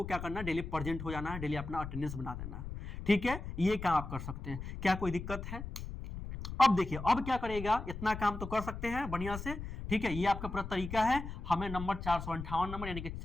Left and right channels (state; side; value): noise; left; rumble, 8 dB below the sound